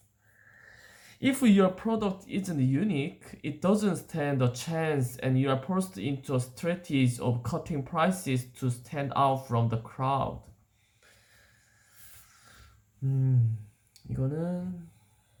If your product isn't unique, it doesn't stand a chance and you are forced into a strategy of cutting prices to stand out from the crowd. 이거는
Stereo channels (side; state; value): both; identical; correlation 1.00